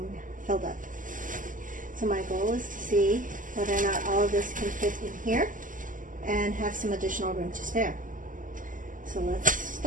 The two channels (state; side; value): late; left; 0.38 ms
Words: filled up. So my goal is to see whether or not all of this can fit in here and have some additional room to spare. So let's